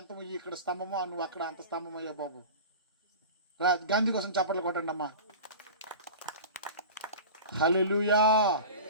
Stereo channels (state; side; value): inverted; both; correlation -0.34